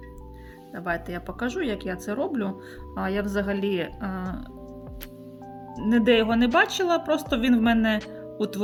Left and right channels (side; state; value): both; identical; correlation 1.00